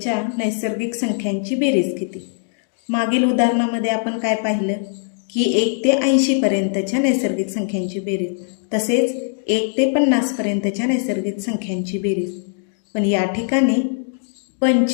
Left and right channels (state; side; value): silent; right; 65 dB below the other